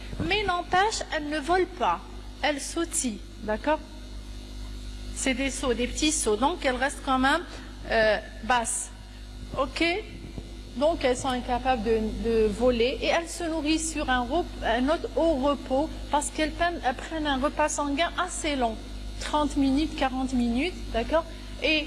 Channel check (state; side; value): identical; both; correlation 1.00